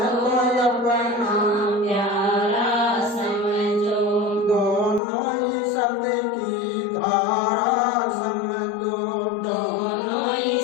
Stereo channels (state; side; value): drops out; right; at 5.0 s